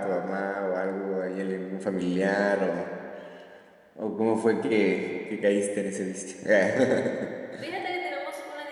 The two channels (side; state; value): both; identical; correlation 1.00